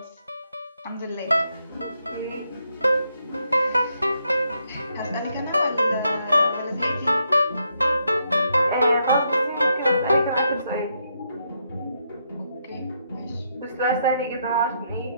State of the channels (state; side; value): inverted; both; correlation -0.77